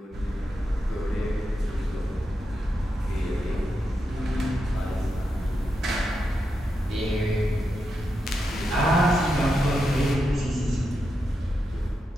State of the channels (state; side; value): normal; both; correlation 0.86